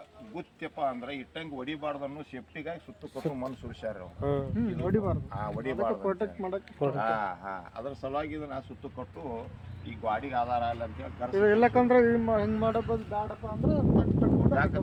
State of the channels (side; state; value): both; identical; correlation 1.00